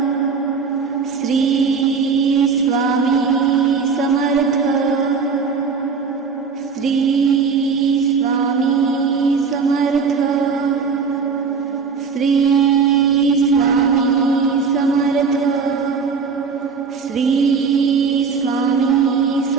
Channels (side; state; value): left; quieter; 5.4 dB